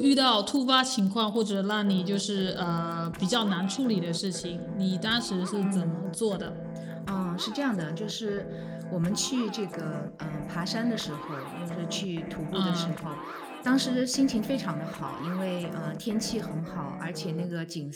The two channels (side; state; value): both; identical; correlation 1.00